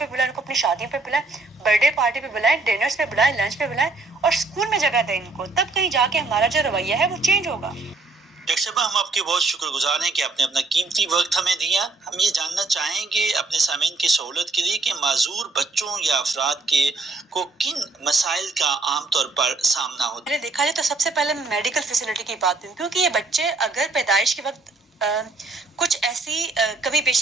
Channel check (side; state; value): left; quieter; 3.4 dB